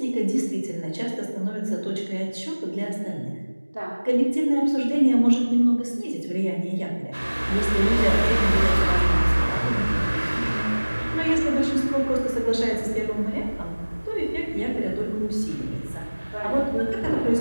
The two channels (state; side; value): inverted; both; correlation -1.00